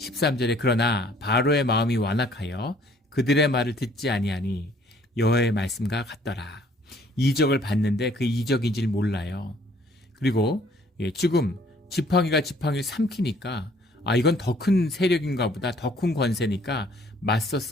그러나 바로의 마음이 완악하여 그들의 말을 듣지 아니하니 여호와의 말씀과 같더라. 이적을 봤는데 그 이적인지를 몰라요. 그리고 지금 지팡이가 지팡이를 삼키니까 이건 더 큰 세력인가 보다, 더 큰 권세니까 맞서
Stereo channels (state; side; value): normal; both; correlation 0.59